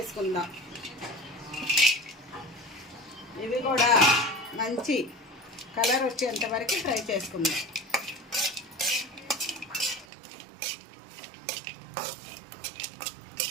ఇవి కూడా మంచి కలర్ వచ్చేంత వరకు ఫ్రై చేసుకుందాం.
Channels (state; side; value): drops out; left; at 10.1 s